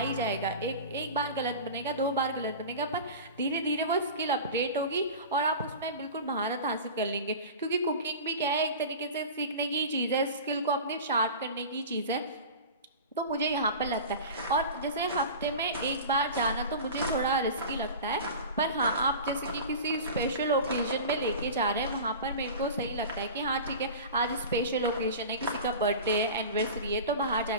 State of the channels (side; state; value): both; inverted; correlation -0.34